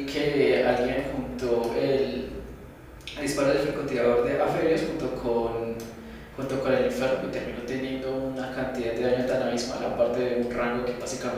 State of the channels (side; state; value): both; identical; correlation 1.00